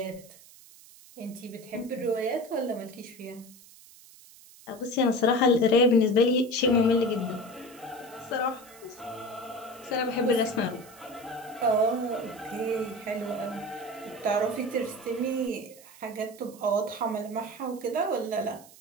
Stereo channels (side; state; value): right; noise; hiss, 22 dB below the sound